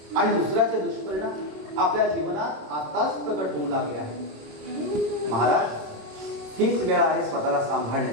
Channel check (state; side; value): late; left; 27 ms